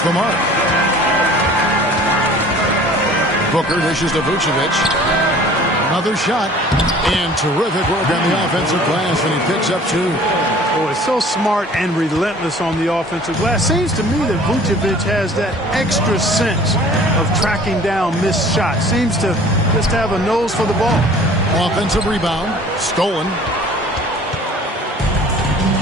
the mark. Booker dishes to Vucevic. Another shot. And terrific work on the offensive glass, and he picks up 2. Oh, it's so smart and relentless on the offensive glass. Seems to me that Vucevic has that extra sense of tracking down missed shots. Seems to just have a nose for the ball. Offensive rebound. Stolen.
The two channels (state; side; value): normal; both; correlation 0.48